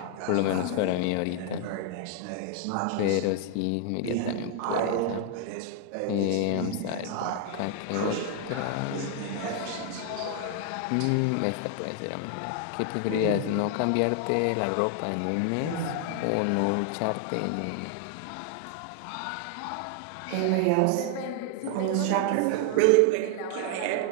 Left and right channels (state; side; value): different; both; correlation 0.00